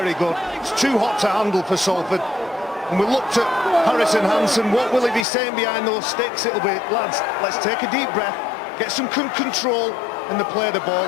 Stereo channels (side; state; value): right; drops out; at 5.2 s